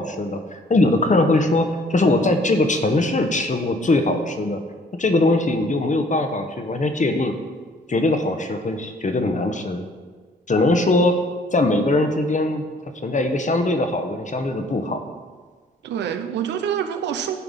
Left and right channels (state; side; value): normal; both; correlation 0.58